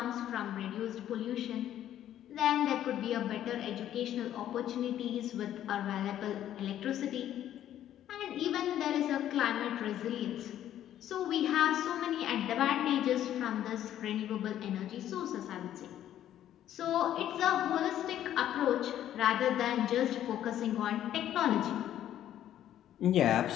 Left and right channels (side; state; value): right; quieter; 11.5 dB